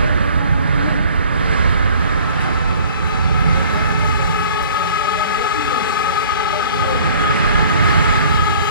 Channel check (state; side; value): inverted; both; correlation -0.51